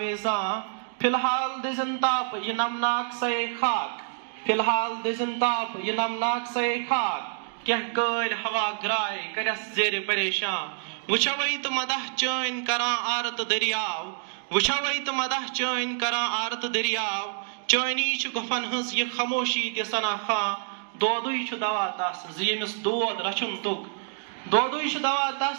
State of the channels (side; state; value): left; silent; digital silence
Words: Filhal dizantap yinamnak say khak, Filhal dizantap yinamnak say khak. Keh kal hawa grai karas zere pareshan, Wuchavait madah chain karan arat daryav, Wuchavait madah chain karan arat daryav, Chaini chukafan hus ye khamoshi ke sanakha, Dodui chudawatas ziemis dood rachuntuk, Dodui